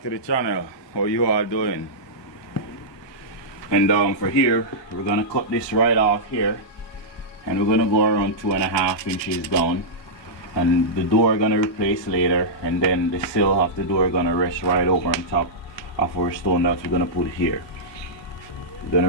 to the channel. How you all doing? And for here, we're gonna cut this right off here, and we're gonna go around 2.5 inches down, and the door gonna replace later, and then the sill of the door gonna rest right over on top of our stone that we're gonna put here. We're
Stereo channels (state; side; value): late; right; 1.3 ms